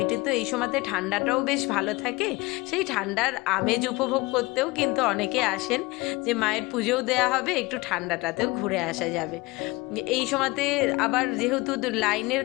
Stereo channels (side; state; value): right; quieter; 22.4 dB